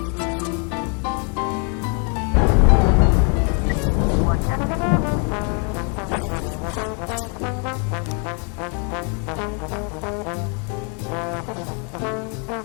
interesting. And it's raining. I have a report.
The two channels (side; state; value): right; quieter; 38.1 dB